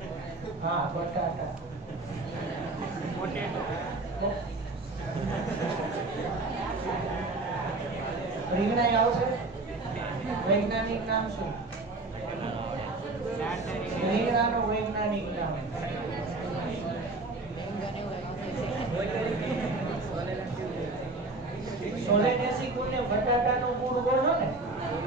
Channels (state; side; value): quieter; left; 3.2 dB